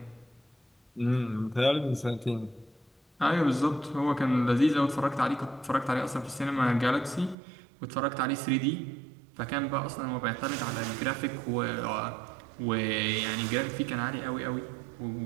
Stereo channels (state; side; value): drops out; left; at 7.4 s